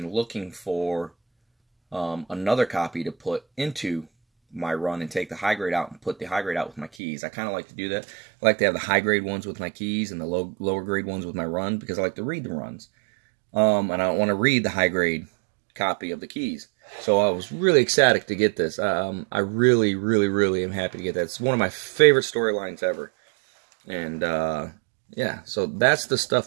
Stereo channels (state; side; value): drops out; left; at 6.9 s